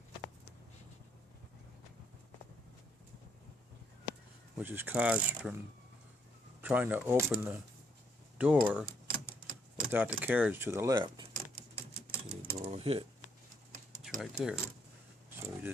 Which is caused from trying to open the door without the carriage to the left. So the door will hit. It's right there. So you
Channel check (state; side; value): normal; both; correlation 0.71